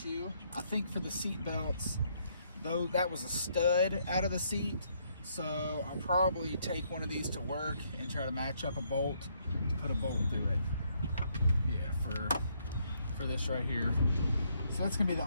I think, for the seat belts, though, that was a stud out of the seat, so I'll probably take one of these to work and try to match up a bolt to put a bolt through it. Yeah, for this right here. So that's gonna be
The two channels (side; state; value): both; inverted; correlation -0.72